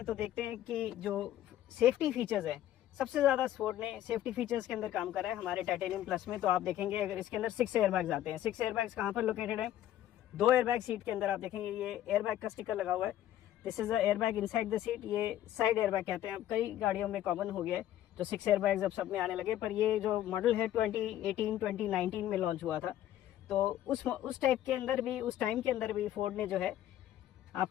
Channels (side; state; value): right; quieter; 12.5 dB